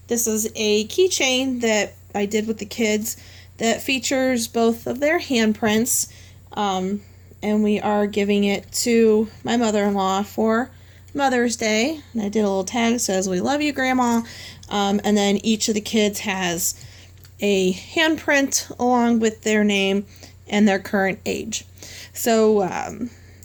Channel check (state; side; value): identical; both; correlation 1.00